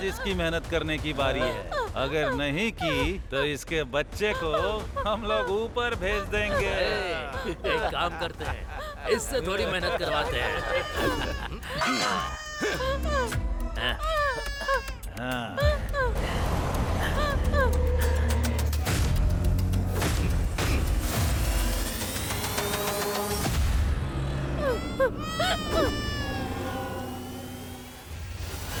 इसकी मेहनत करने की बारी है। अगर नहीं की तो इसके बच्चे को हम लोग ऊपर भेज देंगे। एक काम करते हैं, इससे थोड़ी मेहनत करवाते हैं। हाँ।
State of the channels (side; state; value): both; identical; correlation 1.00